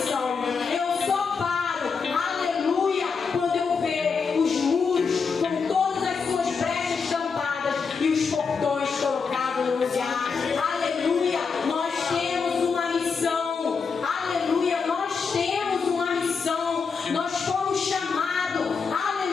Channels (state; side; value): quieter; right; 5.4 dB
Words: Eu só paro, aleluia, quando eu ver os muros com todas as suas brechas tampadas e os portões colocados no lugar. Aleluia, nós temos uma missão. Aleluia, nós temos uma missão. Nós fomos chamados,